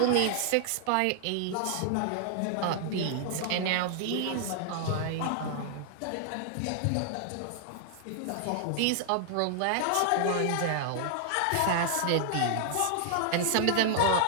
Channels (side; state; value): both; different; correlation 0.00